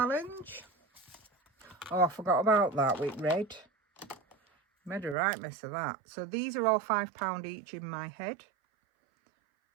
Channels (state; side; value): drops out; left; at 5.2 s